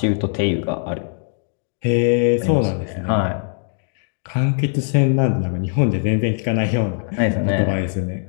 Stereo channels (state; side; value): silent; right; digital silence